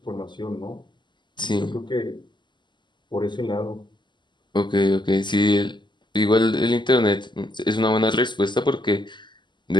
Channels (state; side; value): late; right; 0.22 ms